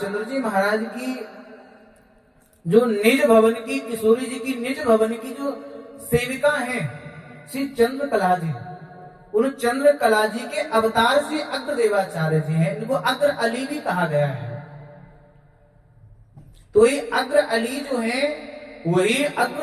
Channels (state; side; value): identical; both; correlation 1.00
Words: जी महाराज की जो निज भवन की, किशोरी जी की निज भवन की जो सेविका हैं श्री चंद्रकला जी, उन चंद्रकला जी के अवतार श्री अग्रदेवाचार्य जी हैं। इनको अग्र अली भी कहा गया है। तो ये अग्र अली जो है वही